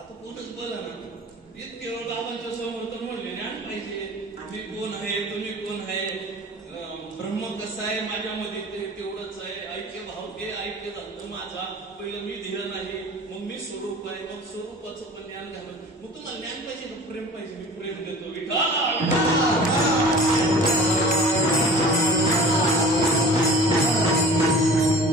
कोणच बल कोण आहे, ब्रह्म कसा आहे माझ्यामध्ये ते तेवढंच आहे, ऐक्य भाव ते ऐक्य झालं माझा, पहिलं मी धीर नाही, मग मी स्वरूप आहे, मग स्वरूपाचं पण ज्ञान घालून, मग तुम्हाला ज्ञान पाहिजे का प्रेम पाहिजे? मी प्रेम देतो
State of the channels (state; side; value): normal; both; correlation 0.42